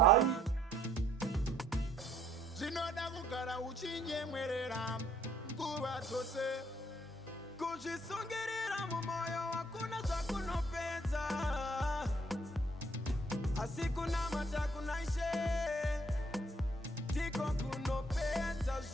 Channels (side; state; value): both; normal; correlation 0.63